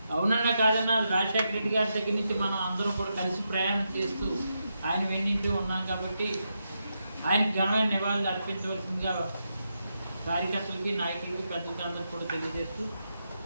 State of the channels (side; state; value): both; inverted; correlation -0.84